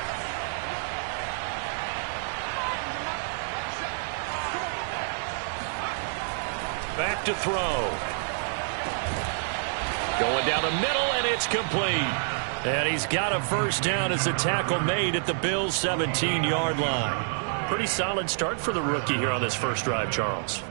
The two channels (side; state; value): left; silent; digital silence